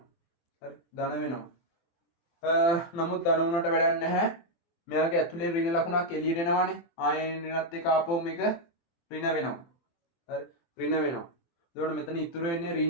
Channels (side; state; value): right; late; 23 ms